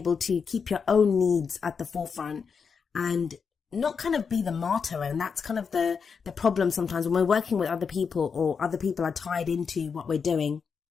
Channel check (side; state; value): right; quieter; 5.9 dB